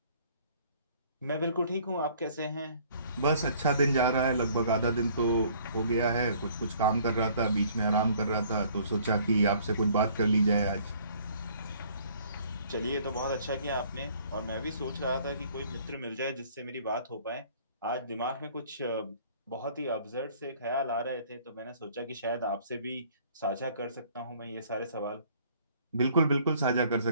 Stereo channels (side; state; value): both; inverted; correlation -0.57